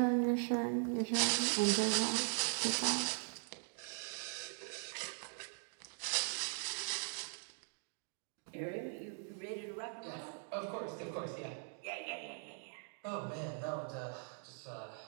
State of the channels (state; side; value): silent; left; 51 dB below the other